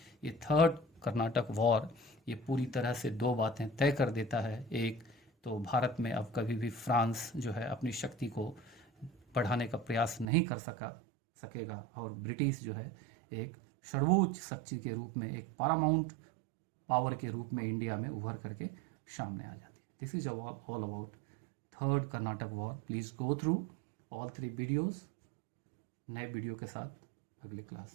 ये थर्ड कर्नाटक वॉर ये पूरी तरह से 2 बातें तय कर देता है। एक तो भारत में अब कभी भी फ्रांस जो है अपनी शक्ति को बढ़ाने का प्रयास नहीं कर सकेगा, और ब्रिटिश जो है एक सर्वोच्च शक्ति के रूप में, एक पैरामाउंट पावर के रूप में इंडिया में उभर करके सामने आ जाती है। This is all about third Karnataka war. Please go through all 3 videos. नए वीडियो के साथ अगले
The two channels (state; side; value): drops out; left; at 10.2 s